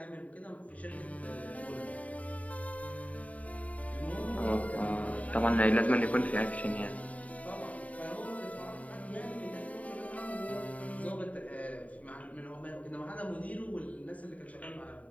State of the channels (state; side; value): late; right; 0.069 ms